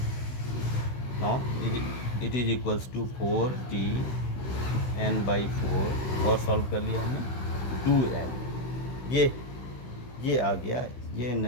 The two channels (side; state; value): right; late; 16 ms